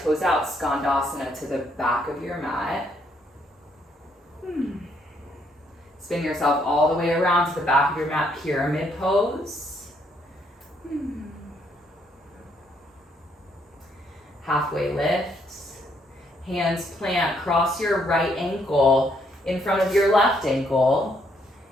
toes out. Skandasana to the back of your mat. Spin yourself all the way around to the back of your mat, pyramid pose. Halfway lift. Hands plant, cross your right ankle in front of your left ankle.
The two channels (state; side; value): normal; both; correlation 0.71